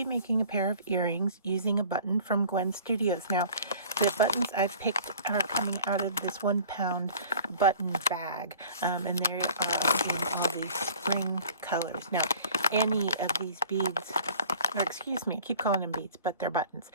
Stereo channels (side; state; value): both; inverted; correlation -0.47